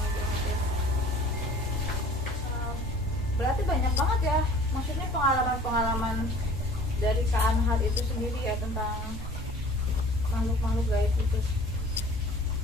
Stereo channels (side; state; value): both; normal; correlation 0.48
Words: banget ya. Berarti banyak banget ya, maksudnya pengalaman-pengalaman dari Kak Anhar itu sendiri ya tentang makhluk-makhluk gaib itu.